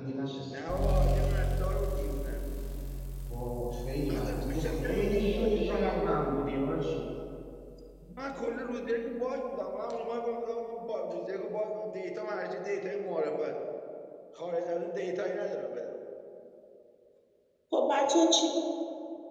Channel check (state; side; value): identical; both; correlation 1.00